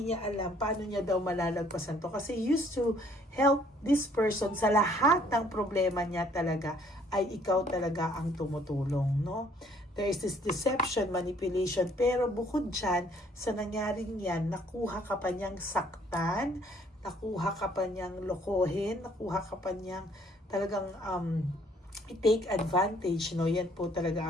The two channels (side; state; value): both; normal; correlation 0.62